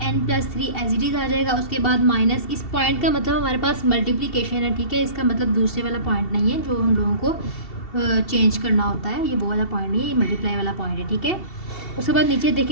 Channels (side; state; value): right; late; 2.7 ms